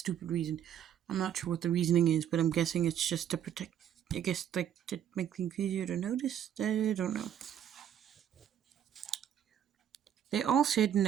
reason. I'm not sure what the reasoning is, but I'm guessing it's just to protect, I guess, like, to make things easier to notice. I don't know. They all said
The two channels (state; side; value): quieter; left; 9.7 dB